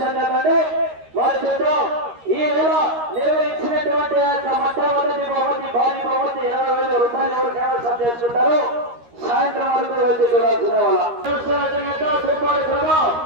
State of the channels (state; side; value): late; left; 13 ms